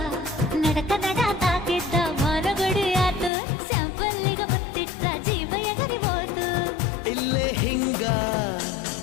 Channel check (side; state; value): right; drops out; at 3.3 s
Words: ನಡಕ ನಡ ತಾಕಿದ್ದ ಮರಗಡಿ ಆತು ಸ್ಯಾಂಪಲ್ಲಿಗ ಮುತ್ತಿಟ್ಟ ಜೀವ ಎಗರಿ ಹೋತು ಇಲ್ಲೇ ಹಿಂಗ